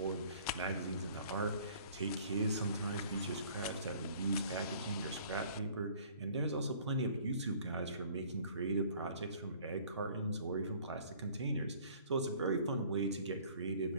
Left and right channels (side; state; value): both; inverted; correlation -0.53